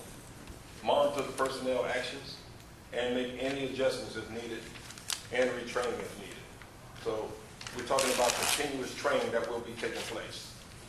Monitor the personnel actions and make any adjustments if needed, and retraining if needed. So we're talking about continuous training that will be taking place.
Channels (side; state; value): both; identical; correlation 1.00